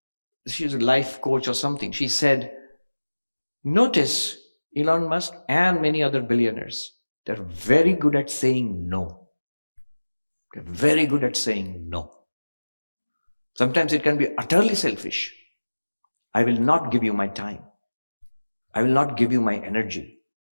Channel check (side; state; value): both; inverted; correlation -1.00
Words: she's a life coach or something, she said, notice Elon Musk and many other billionaires, they're very good at saying no. They're very good at saying no. Sometimes it can be utterly selfish. I will not give you my time. I will not give you my energy.